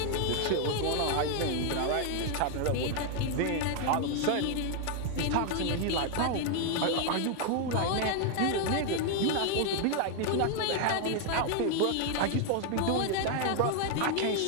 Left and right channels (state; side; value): different; both; correlation 0.00